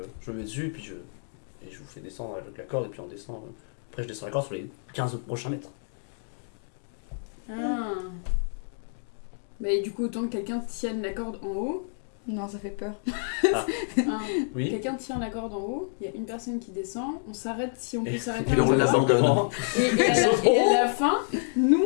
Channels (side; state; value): right; silent; digital silence